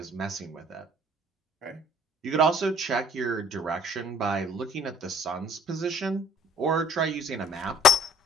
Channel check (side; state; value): both; normal; correlation 0.55